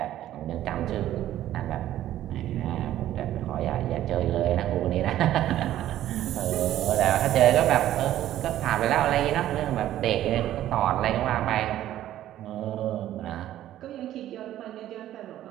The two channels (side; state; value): left; quieter; 12.8 dB